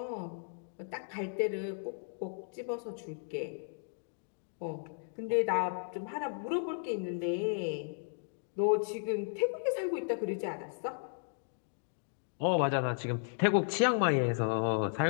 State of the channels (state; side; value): silent; right; digital silence